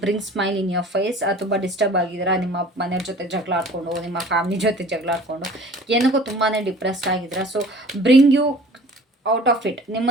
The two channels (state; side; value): normal; both; correlation 0.47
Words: bring smile in your face. ತುಂಬ ಡಿಸ್ಟರ್ಬ್ ಆಗಿದ್ದೀರಾ, ನಿಮ್ಮ ಮನೆಯವ್ರ ಜೊತೆ ಜಗಳ ಆಡ್ಕೊಂಡು, ನಿಮ್ಮ ಫ್ಯಾಮಿಲಿ ಜೊತೆ ಜಗಳ ಆಡ್ಕೊಂಡು, ಏನಕ್ಕೂ ತುಂಬಾ ಡಿಪ್ರೆಸ್ಡ್ ಆಗಿದ್ದೀರಾ. So bring you out of it.